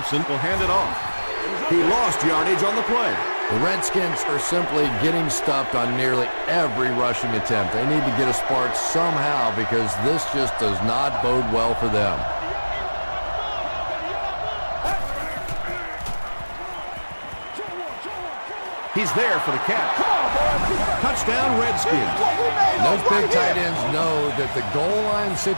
will hand it off. He lost yardage on the play. The Redskins are simply getting stuffed on nearly every rushing attempt. They need to get a spark somehow because this just does not bode well for them. He's there for the catch. Touchdown, Redskins. Those big tight ends know that the goal line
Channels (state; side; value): inverted; both; correlation -1.00